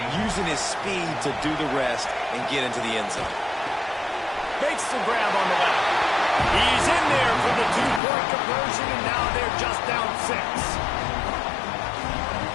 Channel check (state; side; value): drops out; right; at 8.0 s